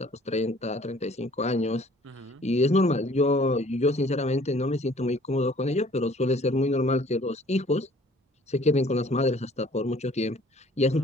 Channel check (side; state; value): both; normal; correlation 0.55